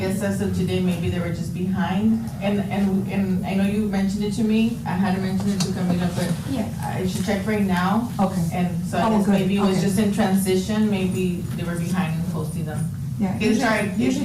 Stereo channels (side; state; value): both; identical; correlation 1.00